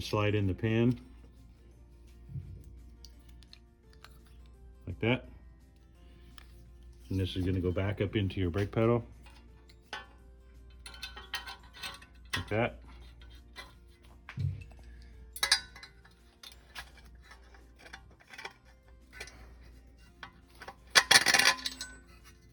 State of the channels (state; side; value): identical; both; correlation 1.00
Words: to slide in the pin like that, and this is going to go back up into your brake pedal like that.